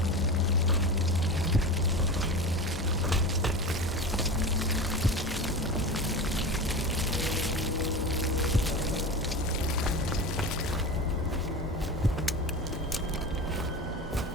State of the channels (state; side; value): normal; both; correlation 0.28